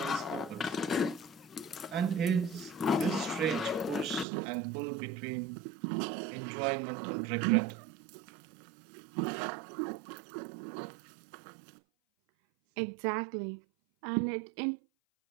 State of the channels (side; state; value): left; drops out; at 4.2 s